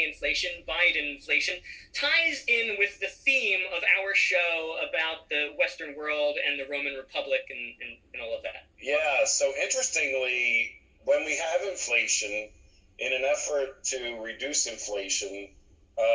inflation, Biden inflation, ties in with the theme of our show about the Western world and the Roman Republic and all of that. Yeah, so interestingly, when we have inflation, in an effort to reduce inflation,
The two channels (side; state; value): both; identical; correlation 1.00